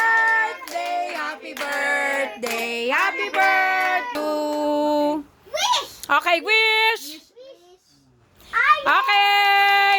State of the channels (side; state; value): both; identical; correlation 1.00